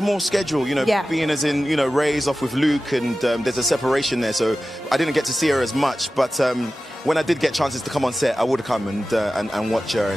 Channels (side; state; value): both; normal; correlation 0.95